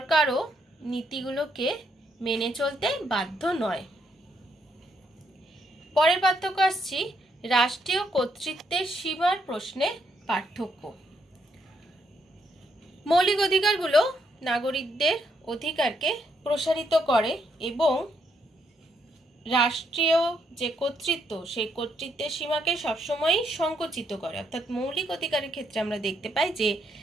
নীতিগুলোকে মেনে চলতে বাধ্য নয়। পরের পার্থক্য আসছি রাষ্ট্রীয় কর্তৃত্বের সীমার প্রশ্নে পার্থক্য। মৌলিক অধিকারগুলো নাগরিকদের অধিকারকে প্রসারিত করে এবং রাষ্ট্রীয় যে কর্তৃত্ব সেই কর্তৃত্বের সীমাকে সবসময় সংকুচিত করে। অর্থাৎ মৌলিক অধিকারের ক্ষেত্রে আমরা দেখতে পাই যে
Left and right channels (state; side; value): normal; both; correlation 0.75